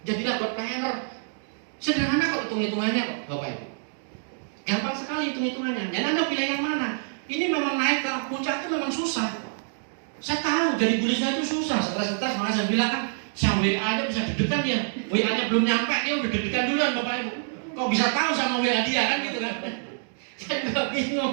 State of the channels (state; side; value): silent; left; digital silence